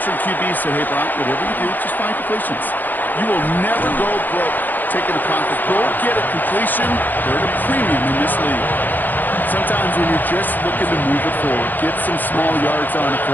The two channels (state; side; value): late; right; 0.087 ms